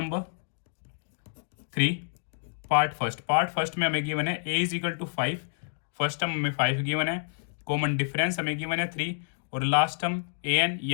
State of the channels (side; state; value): right; silent; digital silence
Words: 3, part first में हमें गिवन है A is equal to 5। First term हमें 5 गिवन है। कॉमन डिफरेंस हमें गिवन है 3 और लास्ट टर्म ए एन